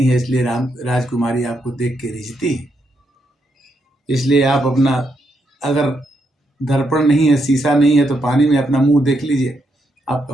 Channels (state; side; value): normal; both; correlation 0.79